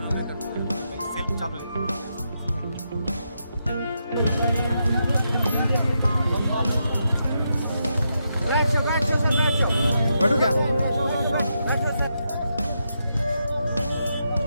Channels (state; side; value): inverted; both; correlation -0.83